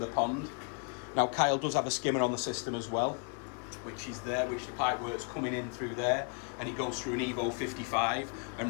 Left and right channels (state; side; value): quieter; right; 39.1 dB